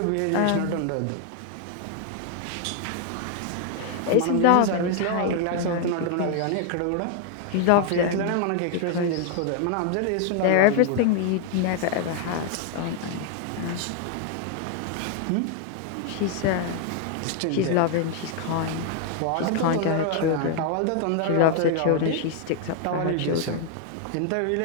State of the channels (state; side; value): different; both; correlation 0.00